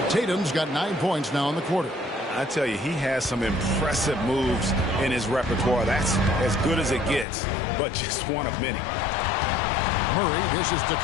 Tatum's got 9 points now in the quarter. I tell you, he has some impressive moves in his repertoire. That's as good as it gets, but just one of many. Murray dishes to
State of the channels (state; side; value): drops out; right; at 7.2 s